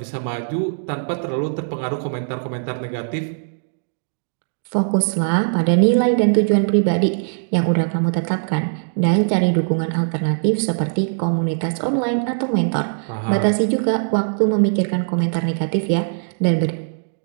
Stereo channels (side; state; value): left; silent; digital silence